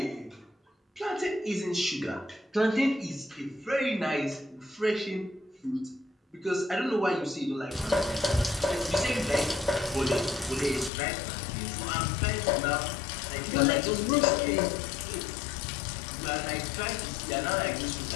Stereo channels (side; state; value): right; drops out; at 10.9 s